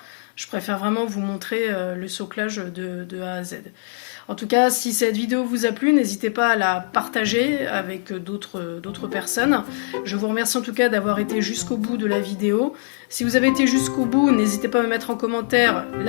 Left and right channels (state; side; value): silent; right; 64 dB below the other